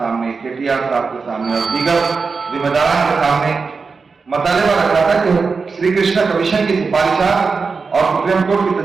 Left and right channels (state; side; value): quieter; left; 4.7 dB